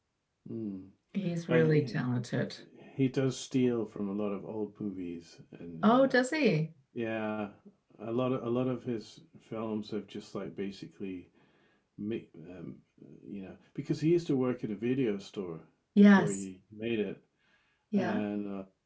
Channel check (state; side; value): identical; both; correlation 1.00